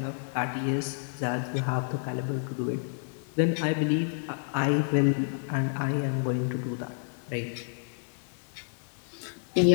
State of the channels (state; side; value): silent; right; digital silence